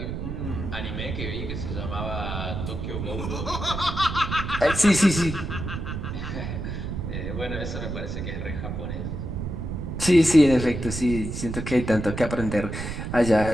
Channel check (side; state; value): right; noise; rumble, 5 dB below the sound